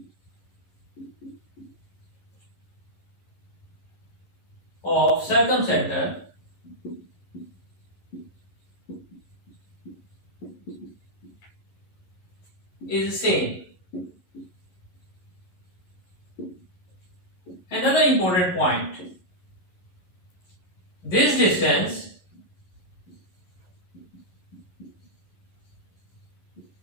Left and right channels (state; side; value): late; right; 11 ms